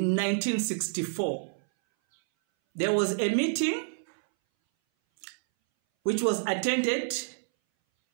1964, there was a meeting which was attended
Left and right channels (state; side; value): silent; left; 59 dB below the other